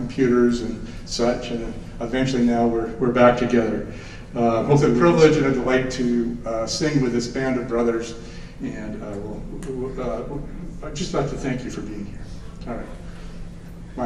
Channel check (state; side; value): identical; both; correlation 1.00